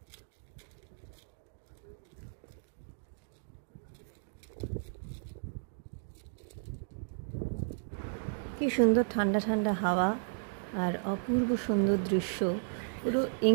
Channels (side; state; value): left; silent; digital silence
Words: কি সুন্দর ঠান্ডা ঠান্ডা হাওয়া আর অপূর্ব সুন্দর দৃশ্য, পুরো